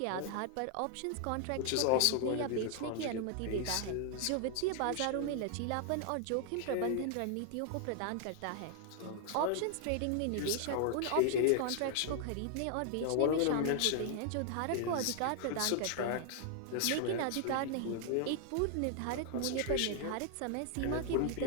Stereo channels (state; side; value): different; both; correlation 0.00